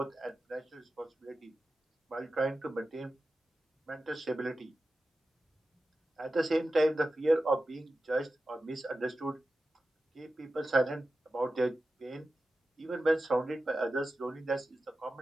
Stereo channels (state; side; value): normal; both; correlation 0.93